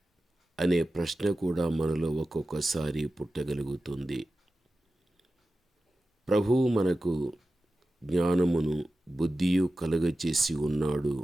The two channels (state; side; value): normal; both; correlation 0.94